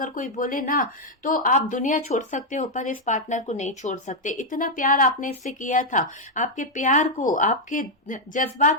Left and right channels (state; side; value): normal; both; correlation 0.00